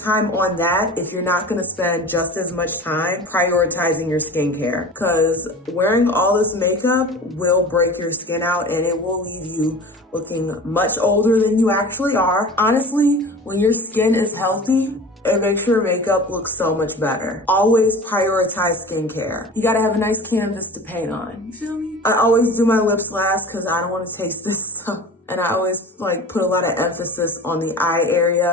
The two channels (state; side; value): normal; both; correlation 0.37